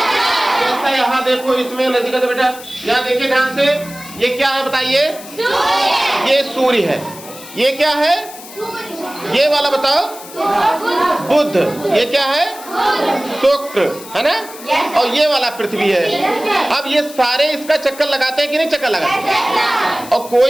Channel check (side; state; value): left; noise; hiss, 16 dB below the sound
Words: यहाँ देखो, इसमें नजदीक से बेटा, यहाँ देखिए ध्यान से, ये क्या है बताइए? ये सूर्य है। ये क्या है? ये वाला बताओ, बुध। ये क्या है? शुक्र, है ना? और ये वाला पृथ्वी है। अब ये सारे इसका चक्कर लगाते हैं कि नहीं चक्कर लगाते? और